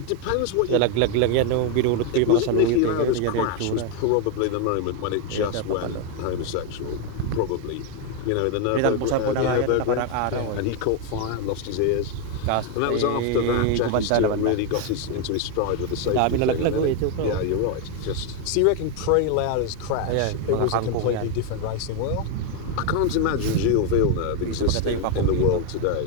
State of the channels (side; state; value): both; different; correlation 0.01